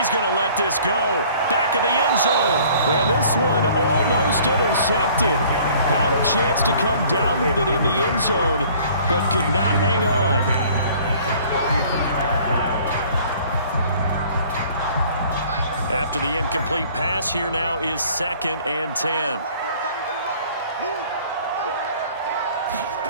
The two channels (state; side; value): inverted; both; correlation -0.53